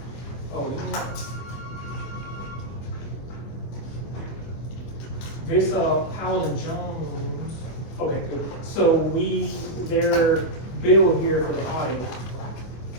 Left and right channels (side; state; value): right; late; 24 ms